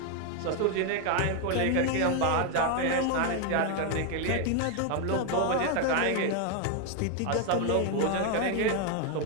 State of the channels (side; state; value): both; different; correlation 0.01